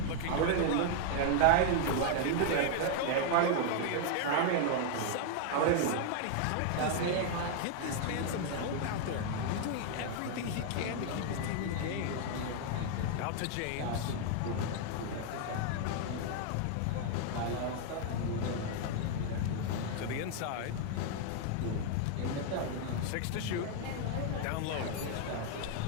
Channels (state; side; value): different; both; correlation 0.00